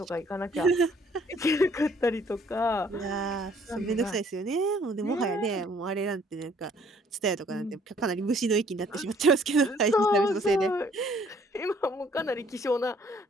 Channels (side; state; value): both; normal; correlation 0.61